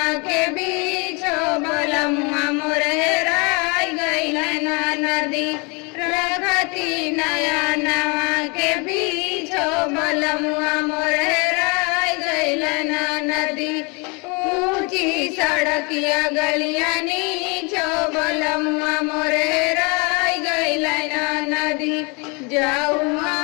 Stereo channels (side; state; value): right; quieter; 30.8 dB